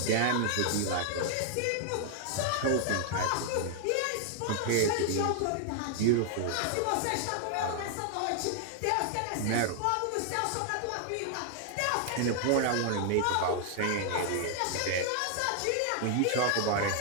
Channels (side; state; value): both; different; correlation 0.00